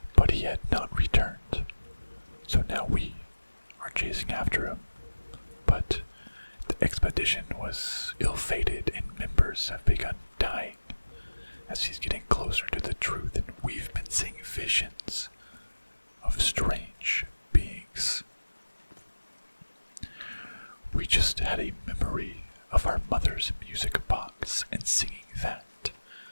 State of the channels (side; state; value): both; inverted; correlation -1.00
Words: But he had not returned, so now we are chasing after him. But the expedition was ill-fated and members have begun dying as he's getting closer to the truth, and we've been seeing visions of strange beings. We just had a memory of our mother's music box, and singing that